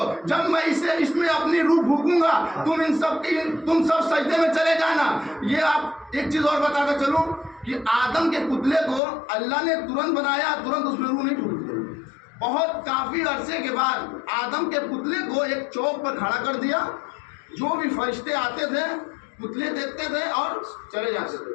जब मैं इसमें अपनी रूह फूंकूंगा, तुम सब सजदे में चले जाना। ये आप एक चीज और बताता चलूं कि आदम के पुतले को अल्लाह ने तुरंत बनाया, तुरंत उसमें रूह नहीं फूंकी। बहुत काफी अरसे के बाद आदम के पुतले को एक चौक पर खड़ा कर दिया। जो भी फरिश्ते आते थे, पुतले देखते थे और चले जाते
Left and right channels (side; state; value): right; drops out; at 9.0 s